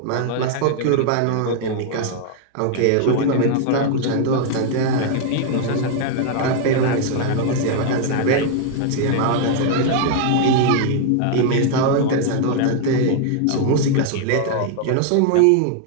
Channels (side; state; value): both; different; correlation 0.00